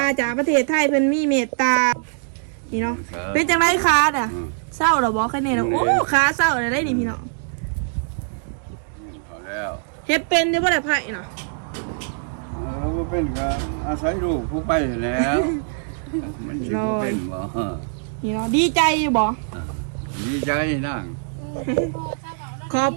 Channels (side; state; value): left; silent; digital silence